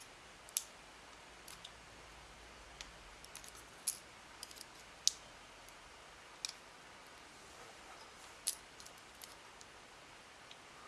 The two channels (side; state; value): both; identical; correlation 1.00